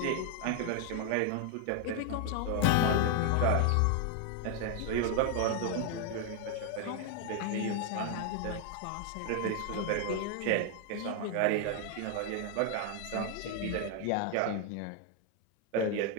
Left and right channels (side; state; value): both; different; correlation 0.00